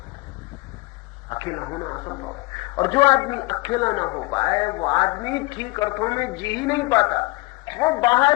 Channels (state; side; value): quieter; right; 23.8 dB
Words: अकेला होना असंभव है। और जो आदमी अकेला ना हो पाए वो आदमी ठीक अर्थों में जी ही नहीं पाता। वो